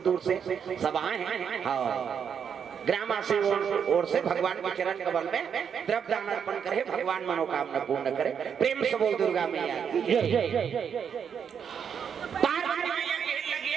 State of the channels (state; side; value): quieter; left; 7.4 dB